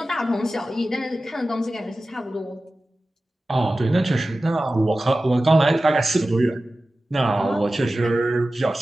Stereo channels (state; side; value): normal; both; correlation 0.95